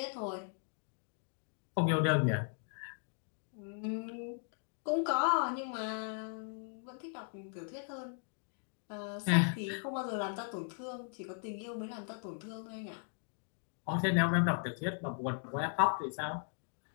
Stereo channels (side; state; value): right; silent; 53 dB below the other